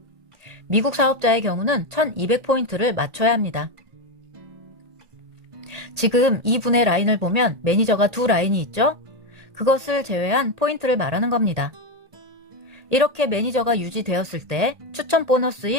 미국 사업자의 경우는 1200포인트를 맞춰야 합니다. 지금 이 분의 라인을 보면 매니저가 2라인이 있죠? 그것을 제외한 포인트를 말하는 겁니다. 이렇게 매니저가 유지되었을 때 추천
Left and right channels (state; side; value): late; left; 1.9 ms